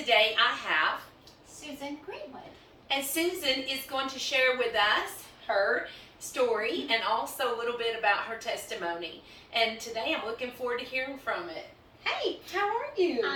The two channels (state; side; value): identical; both; correlation 1.00